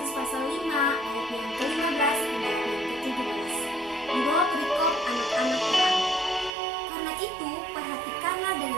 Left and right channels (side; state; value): left; drops out; at 6.5 s